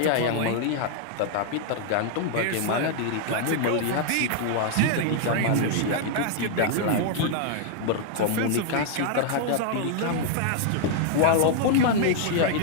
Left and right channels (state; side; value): different; both; correlation 0.00